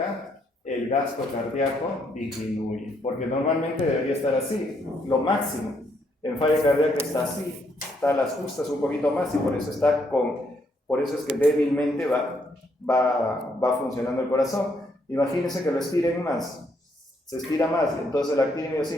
el gasto cardíaco disminuye, porque normalmente debería estar así, lo máximo. En falla cardíaca está así, está a las justas un poquito más y por eso es que débilmente va funcionando el corazón. Imagínense que lo estiren más, se estira más, entonces la actina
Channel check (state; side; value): normal; both; correlation 0.73